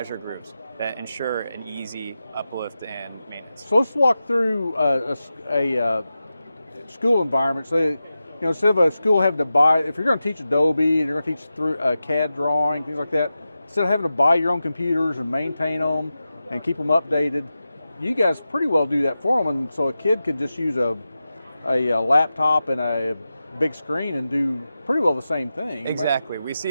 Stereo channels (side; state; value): both; inverted; correlation -0.92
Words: Groups that ensure an easy uplift and maintenance. So let's walk through a school environment. So, instead of a school having to buy, if you're going to teach Adobe and you're going to teach through CAD drawing, things like that, instead of having to buy your own computers and maintain them and keep them updated, you guys pretty well do that for them. And so a kid could just use a laptop and a big screen and do pretty well the same thing. Exactly. We see